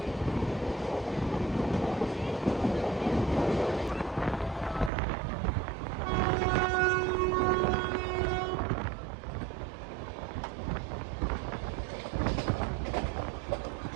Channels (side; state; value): left; drops out; at 4.9 s